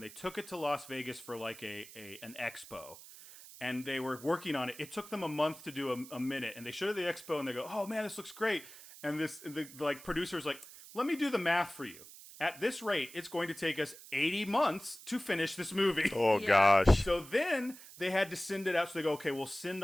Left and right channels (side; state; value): right; noise; hiss, 17 dB below the sound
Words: they took it to Las Vegas for like an expo. And they were working on it. It took them a month to do a minute, and they showed it at the expo, and they go, "Oh man, this looks great." And the producer's like, "Let me do the math for you. At this rate, it's going to take us 80 months to finish this movie." Oh gosh. So then they had to send it out. So they go, "Okay, we'll send